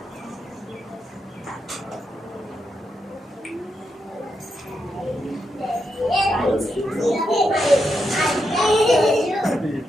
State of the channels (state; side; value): normal; both; correlation 0.84